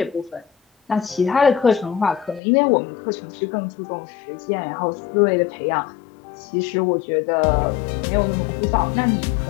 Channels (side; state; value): right; drops out; at 2.4 s